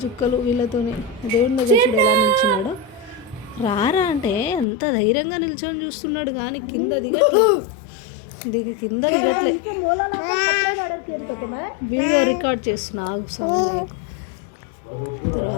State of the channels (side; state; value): right; drops out; at 4.7 s